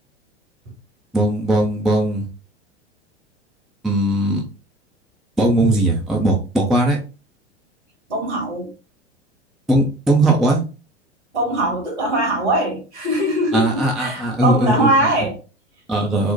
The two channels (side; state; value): both; normal; correlation 0.40